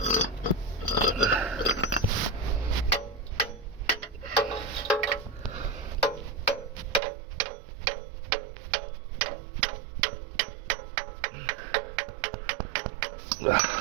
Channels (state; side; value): drops out; left; at 7.0 s